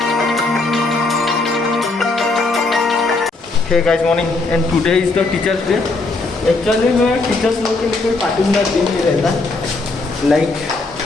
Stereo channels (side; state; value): right; quieter; 3.5 dB